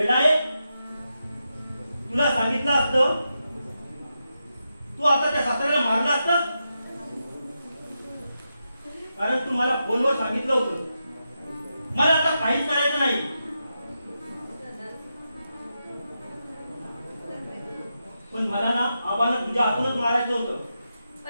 आहे? तुला सांगितलं असतं तू आता त्या सासऱ्याला मारलं असतं. कारण तू मला फोनवर सांगितलं होतं मला आता काहीच करायचं नाही. पण मला ना आबांना तुझ्या हातूनच मारायचं होतं.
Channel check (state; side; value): inverted; both; correlation -0.87